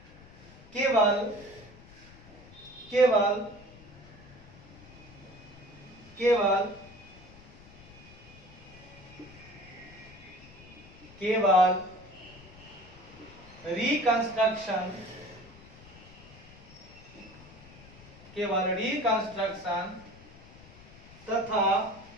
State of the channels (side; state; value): left; noise; rumble, 21 dB below the sound